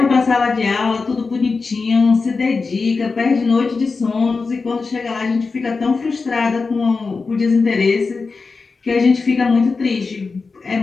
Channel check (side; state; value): right; quieter; 4.4 dB